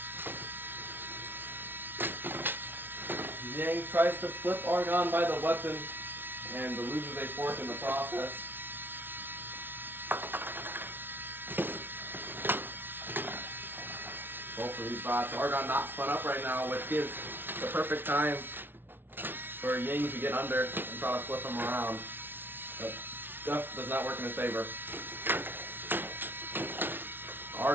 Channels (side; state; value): left; late; 0.10 ms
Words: Yang tries to flip Argon by the weapon and loses a fourth in the process. Both of these bots. Argon not spun up right now, which gives the perfect time for Yang to get under and try to flip him around. But Duff does not work in his favor.